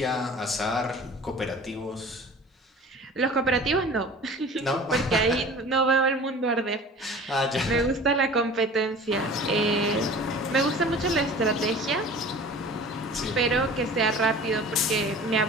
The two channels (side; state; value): both; normal; correlation 0.42